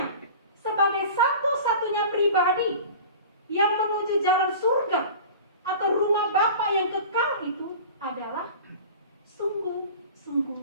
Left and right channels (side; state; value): both; inverted; correlation -0.39